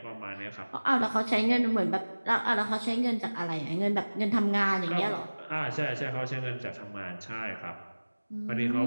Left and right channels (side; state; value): both; inverted; correlation -1.00